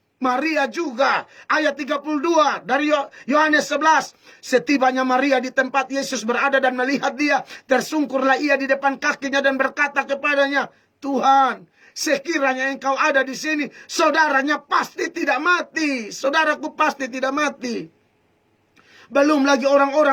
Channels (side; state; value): both; identical; correlation 1.00